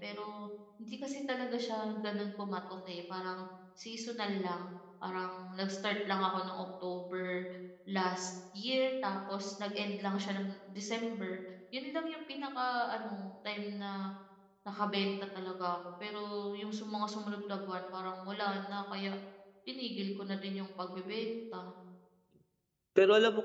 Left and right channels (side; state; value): both; identical; correlation 1.00